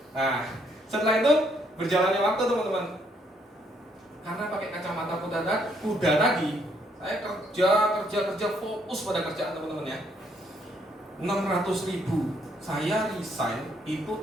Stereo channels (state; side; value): normal; both; correlation 0.70